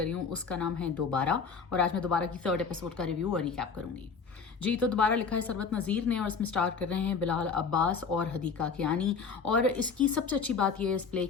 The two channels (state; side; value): quieter; right; 5.4 dB